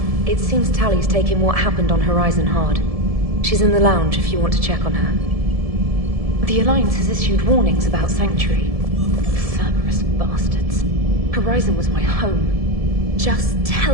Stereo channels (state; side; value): late; left; 1.7 ms